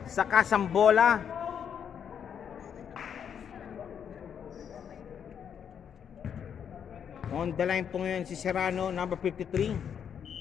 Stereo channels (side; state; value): right; quieter; 8.0 dB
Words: sa kasambola. On the line po ngayon si Serrano, number